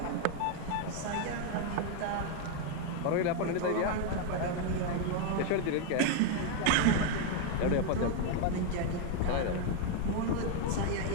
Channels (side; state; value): both; different; correlation 0.01